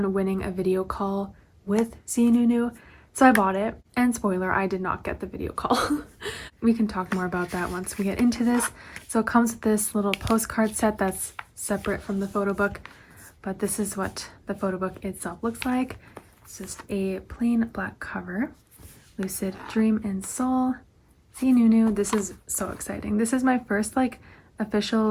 winning a video call with ZeeNuNew. So I bought it, and spoiler, I did not get the video call. We can talk more about that once we get into this. So it comes with this little postcard set that's separate from the photo book, but this is what the photo book itself looks like. It's just a plain black cover. Lucid Dream in Seoul, ZeeNuNew. This is so exciting. This is my first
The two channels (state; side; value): identical; both; correlation 1.00